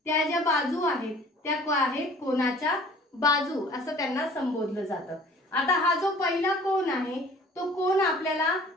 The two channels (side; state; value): both; normal; correlation 0.49